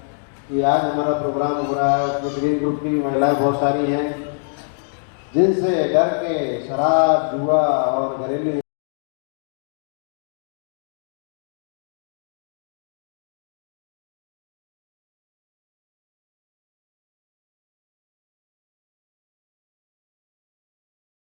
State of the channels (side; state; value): right; silent; digital silence